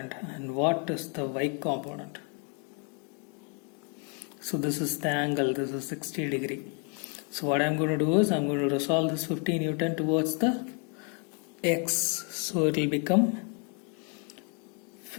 and what is the y component? So this is the angle, this is 60 degree. So what I'm going to do is I'm going to resolve this 15 Newton towards the x. So it will become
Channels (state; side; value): quieter; right; 37.9 dB